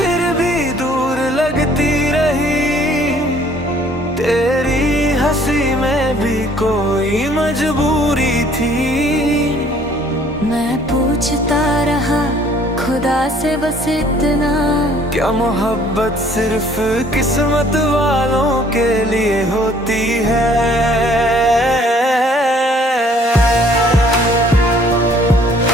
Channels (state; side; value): normal; both; correlation 0.58